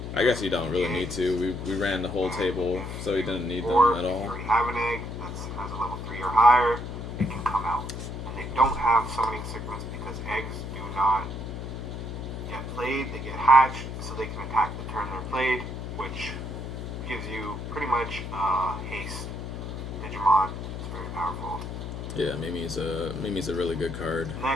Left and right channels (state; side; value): noise; left; hum, 7 dB below the sound